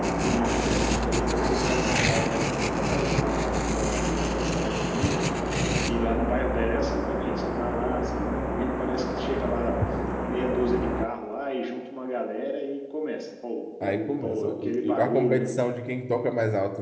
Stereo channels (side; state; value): both; identical; correlation 1.00